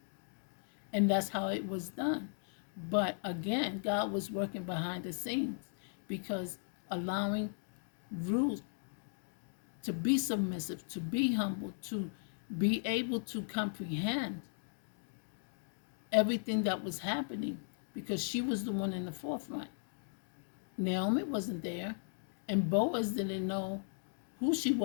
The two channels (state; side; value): silent; right; digital silence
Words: and that's how it was done. But again, God was working behind the scenes because allowing Ruth to be submissive, to be humble, to be able to comprehend everything that was happening because she was the one in the forefront. Naomi wasn't there, and Boaz didn't know who she